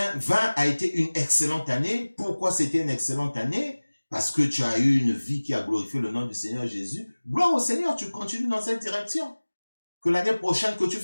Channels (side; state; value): both; inverted; correlation -1.00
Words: a été une excellente année. Pourquoi c'était une excellente année? Parce que tu as eu une vie qui a glorifié le nom du Seigneur Jésus. Gloire au Seigneur, tu continues dans cette direction. Que l'année prochaine, que tu